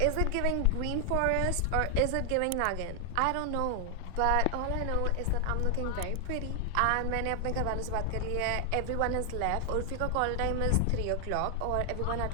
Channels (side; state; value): both; different; correlation 0.00